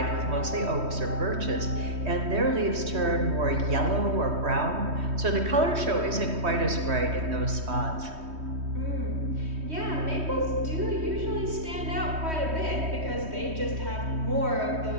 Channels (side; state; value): left; late; 3.2 ms